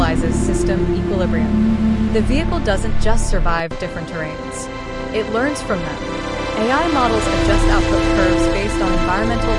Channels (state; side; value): identical; both; correlation 1.00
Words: system equilibrium. The vehicle doesn't just survive different terrains. It learns from them. AI models adjust output curves based on environmental